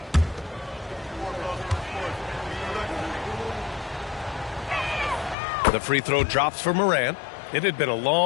The free throw drops for Morant. It had been a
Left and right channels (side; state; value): right; drops out; at 5.4 s